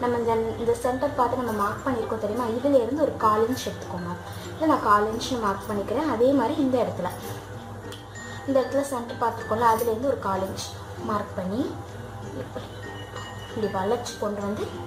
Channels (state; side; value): identical; both; correlation 1.00